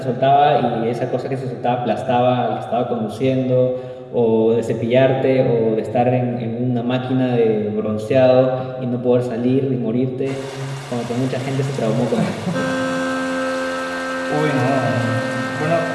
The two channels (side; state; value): both; identical; correlation 1.00